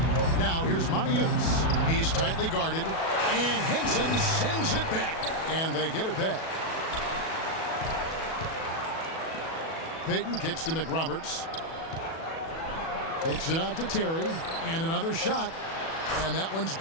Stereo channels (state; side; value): late; right; 37 ms